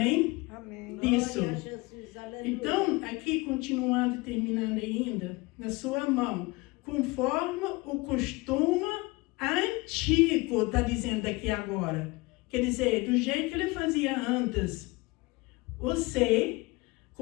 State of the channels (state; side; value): quieter; right; 23.6 dB